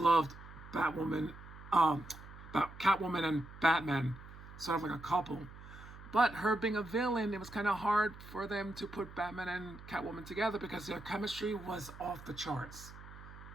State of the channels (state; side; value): noise; right; hum, 16 dB below the sound